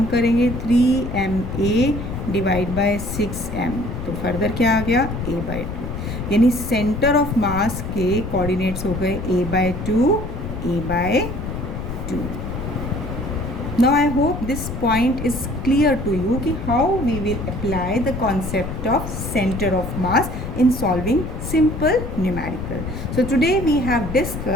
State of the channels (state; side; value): noise; left; rumble, 6 dB below the sound